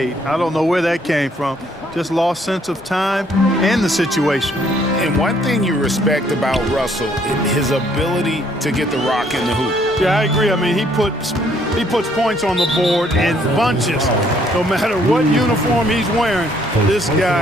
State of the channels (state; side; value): normal; both; correlation 0.66